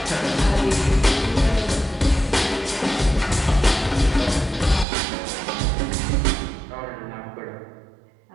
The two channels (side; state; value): left; drops out; at 4.9 s